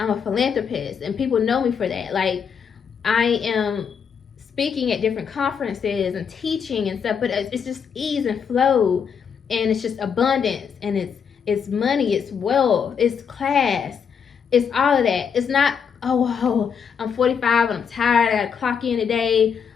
a philanthropist, and people know me for that. Like, I am speaking at different conferences and teaching and stuff, but it's just ease and flow, and it's just abundance, and it's money, it's wealth, it's class, it's all of that. It's not, oh, I'm 45 and I'm tired, I gotta clock in today.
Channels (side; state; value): right; quieter; 6.9 dB